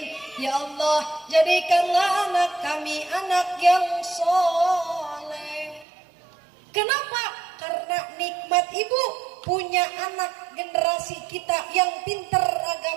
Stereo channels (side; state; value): left; drops out; at 5.9 s